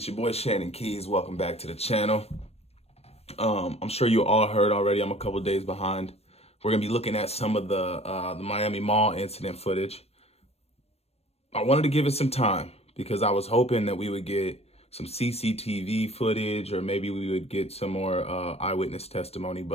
your boy Shannon Keys. Welcome back to the channel. I'm sure you all heard already. I'm a couple days behind. We're gonna be looking at some of the Miami Mall incident footage. I wanted to give it some time because I was hoping that we would get some CCTV footage or maybe we would get some more eyewitness testimony,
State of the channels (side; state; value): right; late; 0.30 ms